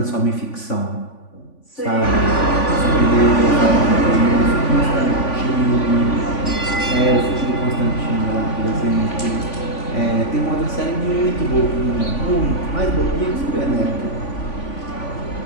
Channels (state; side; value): late; right; 3.5 ms